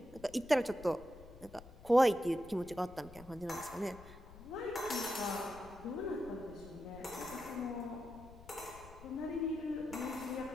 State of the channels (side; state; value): left; noise; rumble, 18 dB below the sound